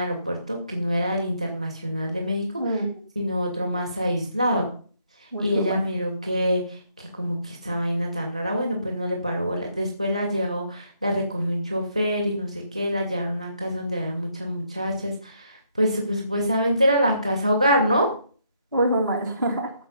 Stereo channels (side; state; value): both; inverted; correlation -0.73